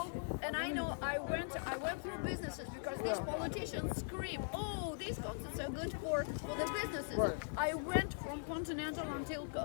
know, I went through businesses because these politicians scream, oh, these concerts are good for the businesses. Right. I went from Continental until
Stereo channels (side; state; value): right; silent; digital silence